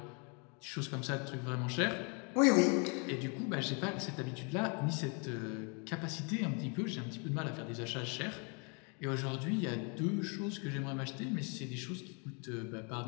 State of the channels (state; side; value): quieter; right; 35.1 dB